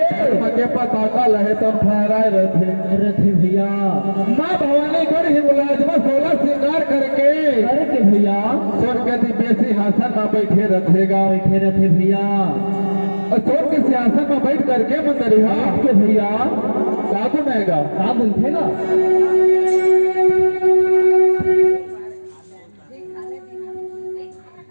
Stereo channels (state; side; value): inverted; both; correlation -1.00